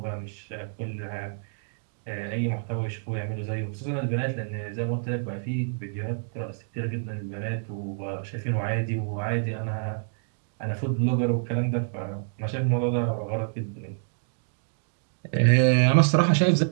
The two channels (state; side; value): silent; left; digital silence